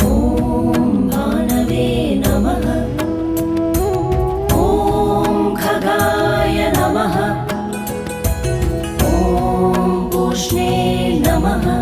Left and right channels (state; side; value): identical; both; correlation 1.00